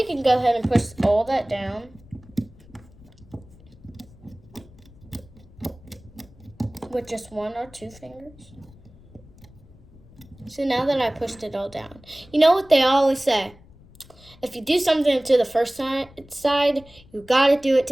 can go ahead and push all that down. With just 1 or 2 fingers. So now that I pushed it all down, you know what they always say? if you do something to the first side, you gotta do it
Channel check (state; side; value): noise; left; rumble, 24 dB below the sound